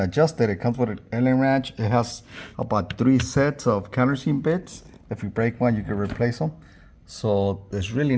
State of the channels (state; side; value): identical; both; correlation 1.00